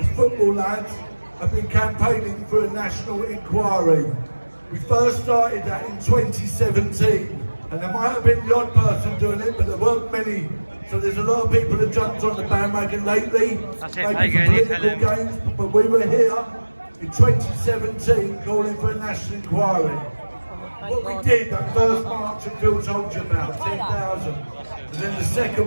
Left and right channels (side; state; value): both; inverted; correlation -1.00